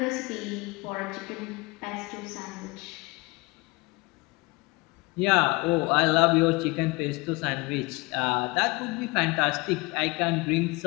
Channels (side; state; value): right; quieter; 25.3 dB